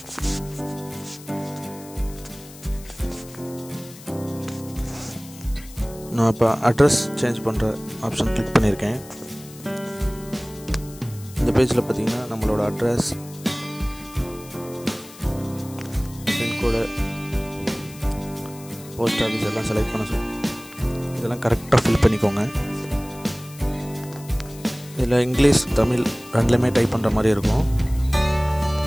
நான் இப்போ அட்ரஸ் சேஞ்ச் பண்ணுற ஆப்ஷன் கிளிக் பண்ணியிருக்கேன். இந்த பேஜில் பார்த்தீங்கன்னா நம்மளோட அட்ரஸ், பின்கோடு, போஸ்ட் ஆஃபீஸ் எல்லாம் செலக்ட் பண்ண சொல்லி இதெல்லாம் கரெக்டாக ஃபில் பண்ணிக்கோங்க. இதில் இங்கிலீஷ், தமிழ் ரெண்டுலேயுமே டைப் பண்ணுற மாதிரி இருக்கும்.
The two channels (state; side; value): noise; left; hiss, 19 dB below the sound